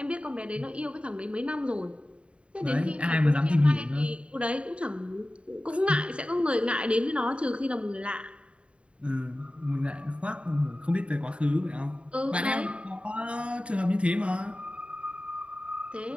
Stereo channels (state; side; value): late; left; 0.059 ms